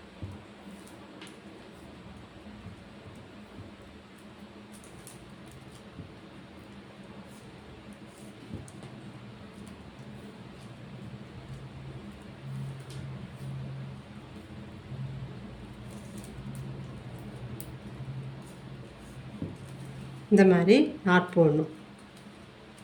இந்த மாதிரி நாட் போடணும்.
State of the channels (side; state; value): both; identical; correlation 1.00